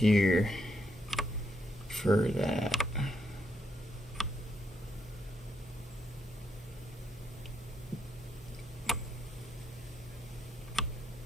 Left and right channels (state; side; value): normal; both; correlation 0.78